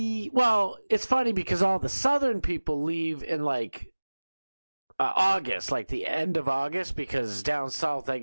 well, it's funny because all the southern people leave in, like, August, like the end of August, because down south, I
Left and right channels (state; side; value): inverted; both; correlation -1.00